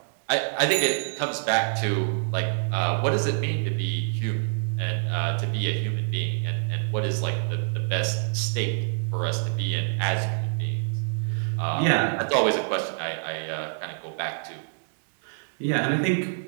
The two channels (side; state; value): left; silent; digital silence